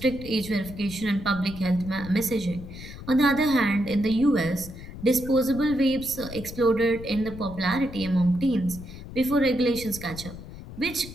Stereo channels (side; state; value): left; noise; rumble, 13 dB below the sound